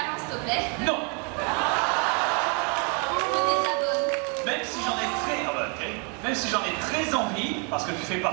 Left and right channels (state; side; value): quieter; left; 36.0 dB